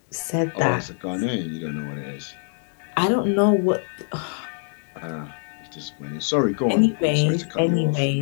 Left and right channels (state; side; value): silent; right; digital silence